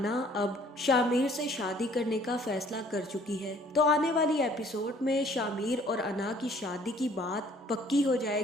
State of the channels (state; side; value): normal; both; correlation 0.57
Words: अब शामिर से शादी करने का फैसला कर चुकी है। तो आने वाली एपिसोड में शामिर और अना की शादी की बात पक्की हो